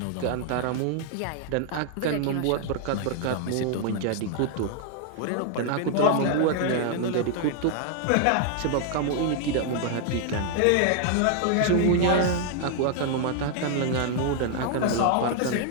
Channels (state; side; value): different; both; correlation 0.00